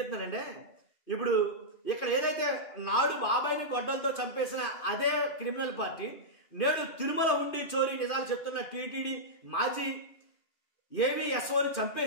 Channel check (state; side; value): late; right; 2.5 ms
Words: ఇప్పుడు ఇక్కడ ఏదైతే నాడు బాబాయిని గొడ్డలతో చంపేసిన అదే క్రిమినల్ పార్టీ నేడు తిరుమల హుండీ చోరీ నిజాలు చెప్తున్న టీటీడీ మాజీ ఏవీఎస్ఓని